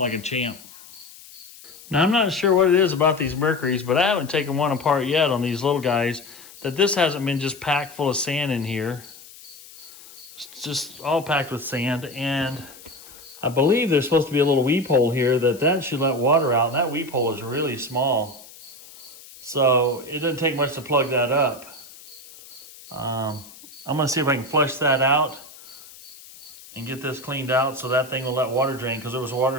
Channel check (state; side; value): noise; left; hiss, 19 dB below the sound